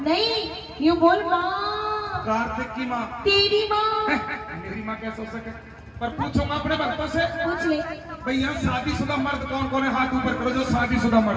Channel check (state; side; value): identical; both; correlation 1.00